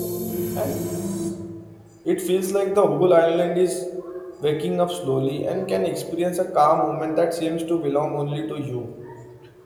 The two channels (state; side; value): identical; both; correlation 1.00